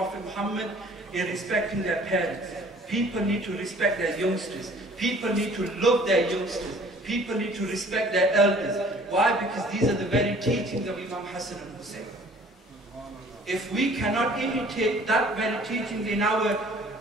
Muhammad in respecting their parents. People need to respect their youngsters. People need to love their youngsters. People need to respect their elders. Why? Because these are the very teachings of Imam Hassan and Hussein. If we cannot imitate that very teachings in our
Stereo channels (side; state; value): both; normal; correlation 0.53